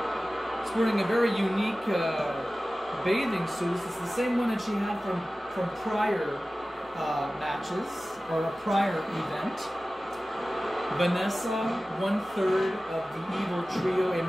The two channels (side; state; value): both; normal; correlation 0.96